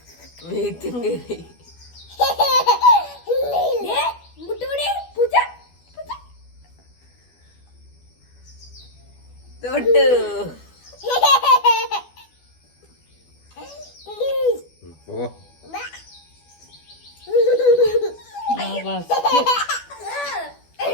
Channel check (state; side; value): late; right; 12 ms